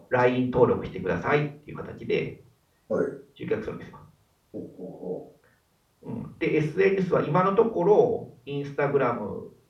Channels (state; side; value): identical; both; correlation 1.00